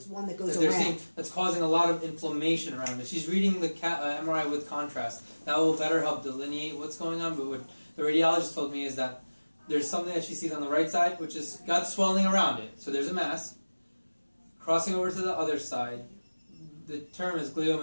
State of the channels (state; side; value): inverted; both; correlation -1.00